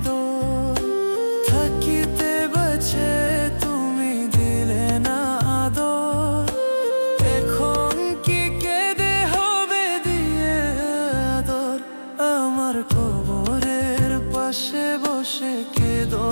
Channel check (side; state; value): both; inverted; correlation -1.00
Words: থাকিতে বাঁচে তুমি দিলে না আদর। এখন কি কেঁদে হবে দিয়ে আদর। আমার কবরের পাশে বসে কেঁদো